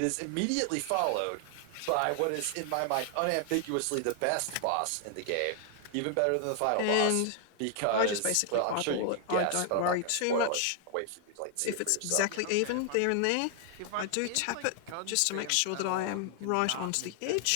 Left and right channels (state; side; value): different; both; correlation 0.00